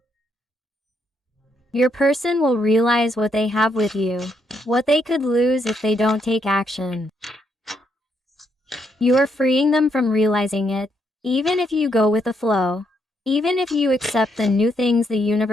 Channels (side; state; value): both; normal; correlation 0.76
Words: Your person will realize what they have with you, what they could lose if they don't take action. You are freeing them from realizing it, even if you go with the flow. Even if you accept the new things the